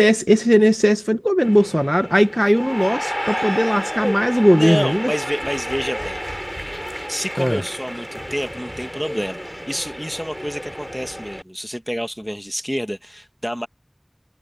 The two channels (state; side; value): identical; both; correlation 1.00